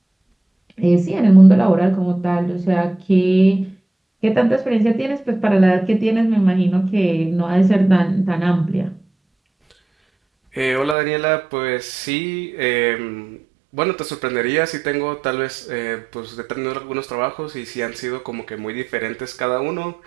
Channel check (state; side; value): drops out; left; at 11.0 s